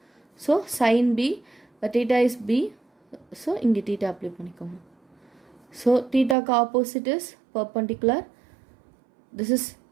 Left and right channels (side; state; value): left; drops out; at 6.4 s